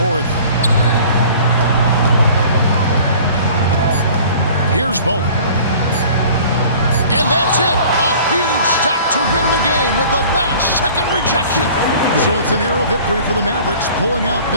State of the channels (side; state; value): both; inverted; correlation -0.47